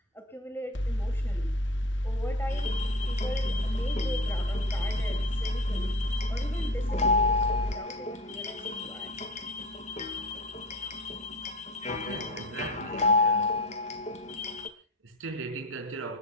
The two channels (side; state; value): both; normal; correlation 0.32